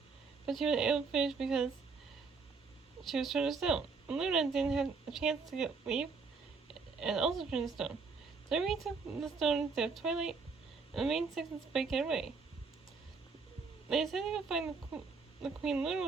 but she wasn't able to finish because she was turned to stone. And Luna didn't have a chance to leave, and also turned to stone. So they took the stone instead of Twilight, and the main six and Spike get away. They decided to go find the Queen Luna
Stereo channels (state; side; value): quieter; left; 4.7 dB